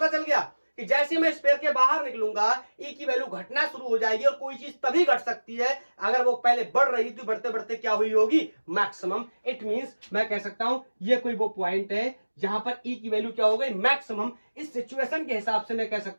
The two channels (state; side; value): inverted; both; correlation -1.00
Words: चल गया कि जैसे मैं स्फीयर के बाहर निकलूंगा, E की वैल्यू घटना शुरू हो जाएगी, और कोई चीज तभी घट सकती है अगर वो पहले बढ़ रही थी, बढ़ते बढ़ते क्या हुई होगी? मैक्सिमम। इट मींस मैं कह सकता हूं ये कोई वो पॉइंट है जहां पर E की वैल्यू क्या हो गई? मैक्सिमम। इस सिचुएशन के हिसाब से मैं कह